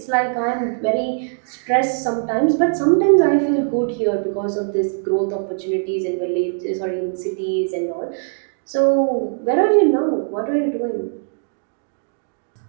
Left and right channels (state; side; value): silent; left; digital silence